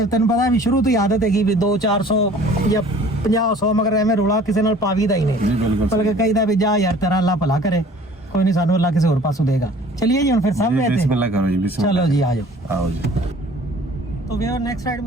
ਤੈਨੂੰ ਪਤਾ ਵੀ ਸ਼ੁਰੂ ਤੋਂ ਹੀ ਆਦਤ ਹੈਗੀ ਵੀ 200-400 ਜਾਂ 50-100 ਮਗਰ ਐਵੇਂ ਰੋਲਾ ਕਿਸੇ ਨਾਲ ਪਾਵੀ ਦਾ ਹੀ ਨਹੀਂ ਜੀ ਬਿਲਕੁਲ ਬਲਕਿ ਕਹੀਦਾ ਵੀ ਜਾ ਯਾਰ ਤੇਰਾ ਅੱਲਾ ਭਲਾ ਕਰੇ ਕੋਈ ਨਹੀਂ ਸਾਨੂੰ ਅੱਲਾ ਕਿਸੇ ਹੋਰ ਪਾਸੋਂ ਦੇਗਾ ਚलिए जी फिर सब में बिस्मिल्लाह करो जी बिस्मिल्लाह चलो जी आ जाओ आओ जी तो भैया नेक्स्ट राइड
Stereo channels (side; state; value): both; normal; correlation 0.50